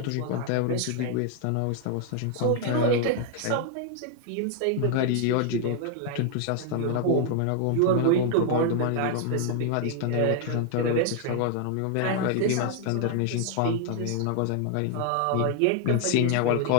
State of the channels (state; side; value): different; both; correlation 0.00